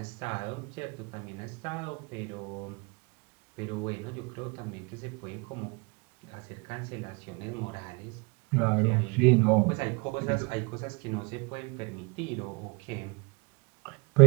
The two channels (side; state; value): left; quieter; 29.7 dB